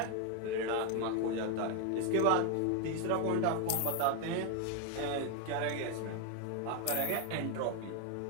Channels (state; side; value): different; both; correlation 0.01